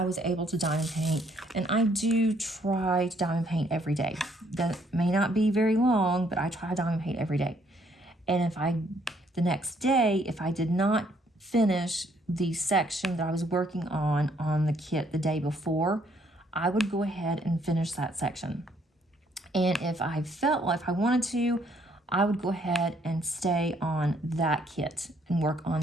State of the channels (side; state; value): both; normal; correlation 0.67